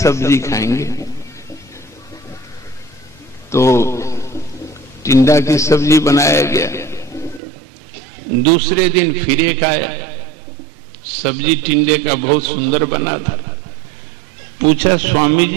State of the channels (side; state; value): left; drops out; at 7.4 s